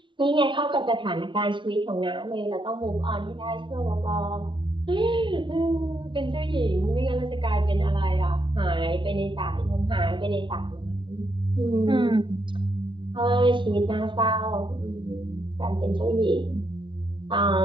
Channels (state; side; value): late; left; 0.24 ms